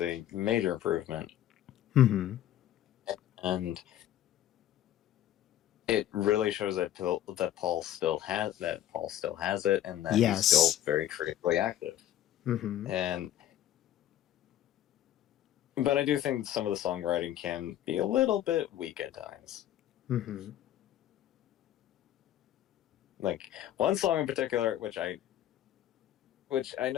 a major improvement, Mm-hmm. and it really shows that Paul still has it, and that he's still Yes. very creatively active. Mm-hmm. And but I do think some of the songwriting can be a little bit weak at times. Mm-hmm. Like one song in particular, which I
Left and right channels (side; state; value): right; quieter; 12.1 dB